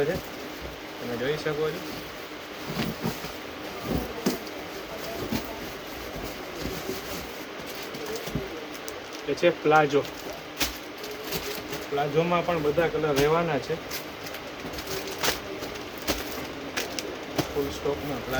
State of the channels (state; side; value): identical; both; correlation 1.00